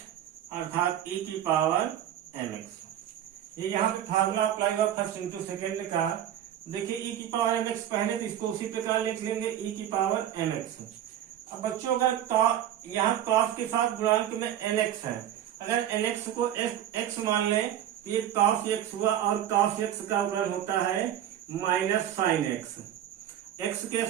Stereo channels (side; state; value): left; quieter; 11.0 dB